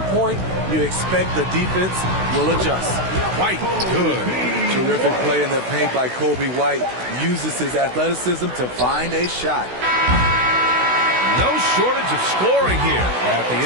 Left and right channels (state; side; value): late; left; 16 ms